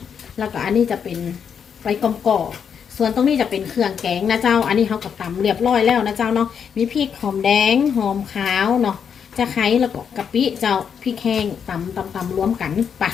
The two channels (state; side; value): quieter; right; 7.3 dB